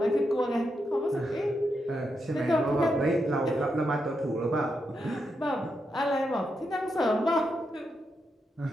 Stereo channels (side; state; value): both; normal; correlation 0.84